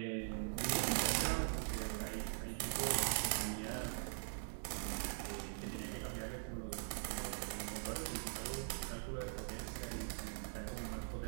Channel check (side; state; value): left; silent; digital silence